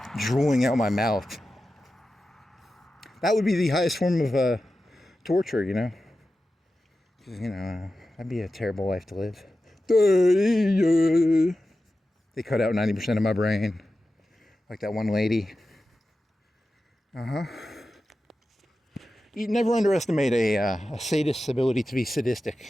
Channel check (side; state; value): both; normal; correlation 0.93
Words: drooling out my mouth. That would be the highest form of torture, you know? Because, you know, that'd be a terrible life to live. They cut out 90% of my brain. Like that one lady. You never underestimate a sadist's ability to be